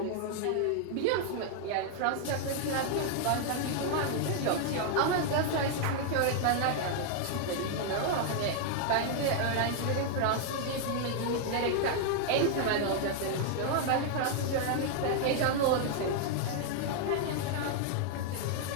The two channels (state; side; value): different; both; correlation 0.00